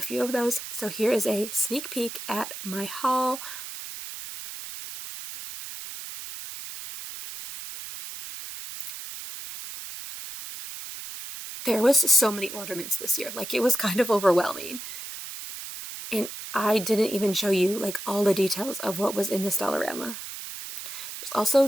few of those. So here is a sneak peek at my haul. There was so many ornaments this year. Like, it was kind of overwhelming. And I didn't even show you like all the details of what was in this Dollarama. There's also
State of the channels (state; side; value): noise; right; hiss, 10 dB below the sound